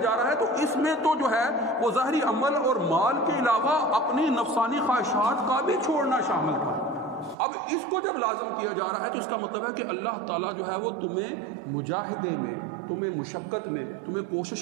رہا ہے تو اس میں تو جو ہے وہ ظاہری عمل اور مال کے علاوہ اپنی نفسانی خواہشات کا بھی چھوڑنا شامل تھا. اب اس کو جب لازم کیا جا رہا ہے تو اس کا مطلب ہے کہ اللہ تعالیٰ جو ہے وہ تمہیں مجاہدے میں، تمہیں مشقت میں، تمہیں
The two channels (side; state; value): left; drops out; at 7.4 s